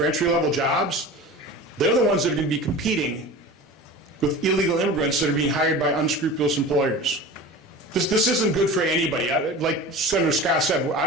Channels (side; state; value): both; normal; correlation 0.35